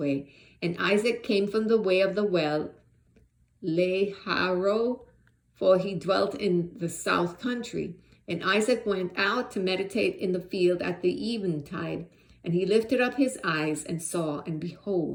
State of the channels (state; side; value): identical; both; correlation 1.00